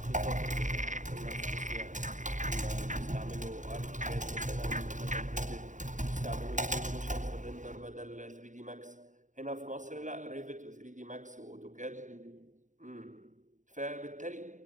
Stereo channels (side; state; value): left; late; 0.36 ms